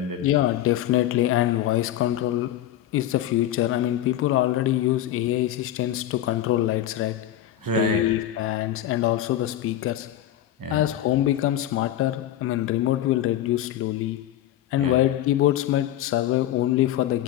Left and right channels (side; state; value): right; quieter; 12.3 dB